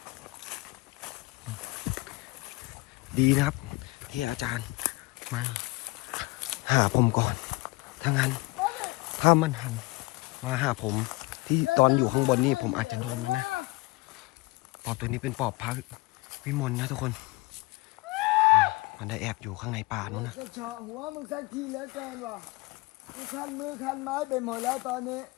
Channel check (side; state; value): right; quieter; 23.9 dB